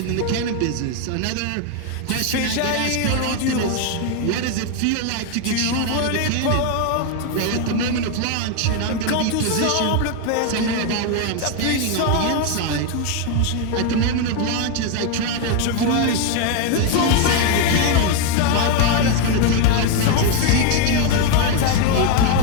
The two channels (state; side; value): different; both; correlation 0.01